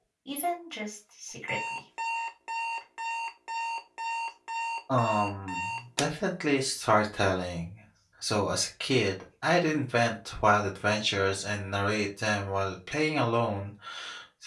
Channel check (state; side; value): identical; both; correlation 1.00